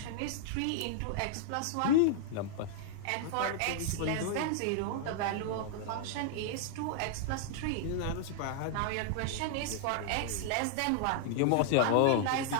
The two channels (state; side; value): different; both; correlation -0.01